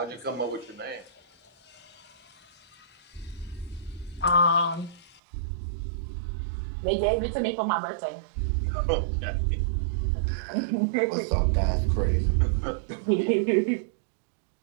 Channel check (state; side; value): drops out; left; at 5.2 s